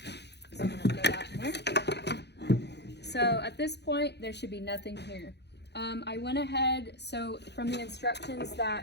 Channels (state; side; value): late; right; 0.49 ms